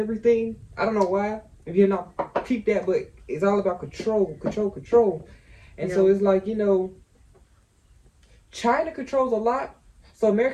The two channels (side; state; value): both; identical; correlation 1.00